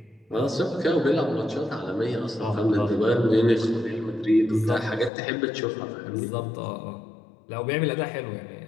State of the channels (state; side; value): drops out; right; at 5.1 s